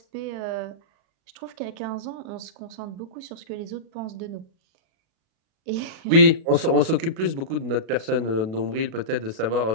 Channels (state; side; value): late; left; 37 ms